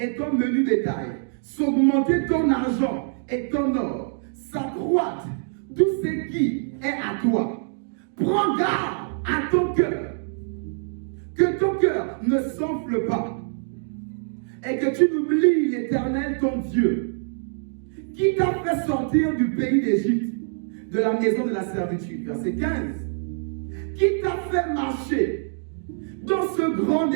ton menu bétail, s'augmenter ton argent et ton or, s'accroître tout ce qui est à toi, prends garde à ton cœur, que ton cœur ne s'enfle pas, et que tu n'oublies l'Éternel ton Dieu, qui t'a fait sortir du pays d'Égypte, de la maison de la servitude. Verset 15. Qui t'a fait marcher dans ce grand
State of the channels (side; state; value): left; silent; digital silence